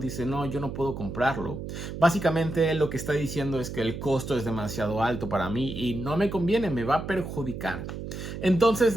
no, yo no puedo comprarlo. Básicamente lo que está diciendo es que el costo es demasiado alto para mí y no me conviene, me va a perjudicar.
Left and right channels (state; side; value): noise; right; hum, 8 dB below the sound